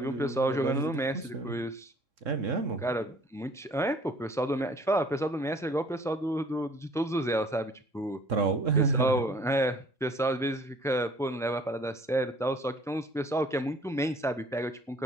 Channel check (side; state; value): both; normal; correlation 0.55